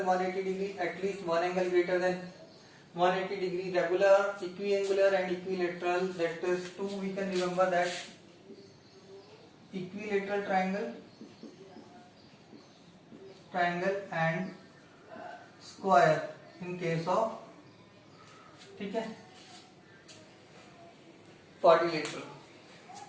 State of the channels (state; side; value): identical; both; correlation 1.00